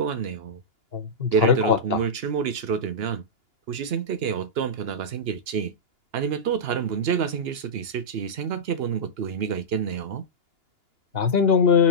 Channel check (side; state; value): left; late; 2.9 ms